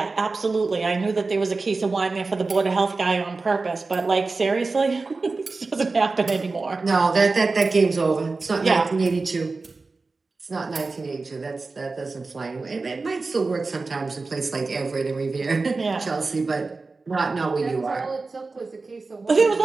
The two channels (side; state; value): left; quieter; 3.8 dB